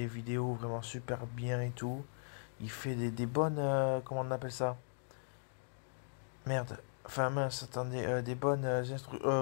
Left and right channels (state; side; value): silent; right; digital silence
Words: vidéos vraiment super bien et tout. Il fait des bonnes. Comment on appelle ça? Merde. Enfin, mince, attendez. Des bonnes